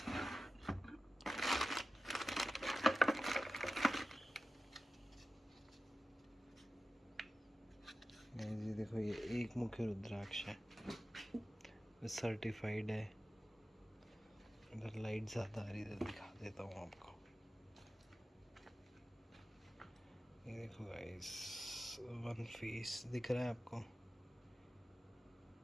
ये देखो, ये एक मुखी रुद्राक्ष है, सर्टिफाइड है। इधर लाइट ज़्यादा आ रही है, इधर दिखा देता हूँ आपको। ये देखो गाइस, वन फेस दिख रहा है आपको?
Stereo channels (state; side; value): normal; both; correlation 0.94